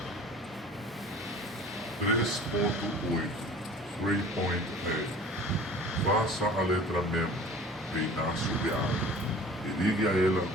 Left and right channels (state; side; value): normal; both; correlation 0.44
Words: 3.8 3.8 Faça a letra Mem reinar sobre a água e ligue a ela